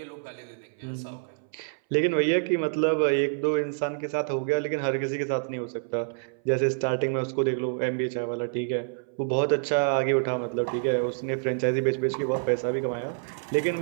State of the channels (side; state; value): left; silent; 60 dB below the other